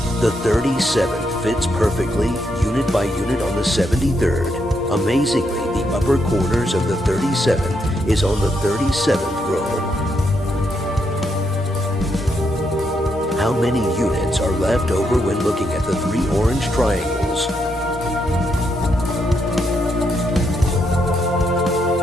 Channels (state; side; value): normal; both; correlation 0.79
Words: The 37th fits perfectly, unit by unit, on the 73rd. Amazingly, the upper corners of the 37th is on the 37th row. How many units are left over when looking at the 3 orange triangles?